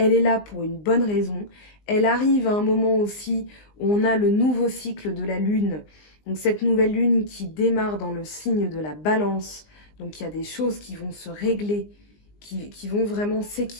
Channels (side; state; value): right; late; 19 ms